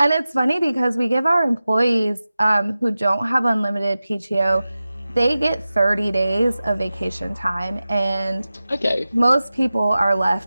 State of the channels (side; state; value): both; inverted; correlation -0.95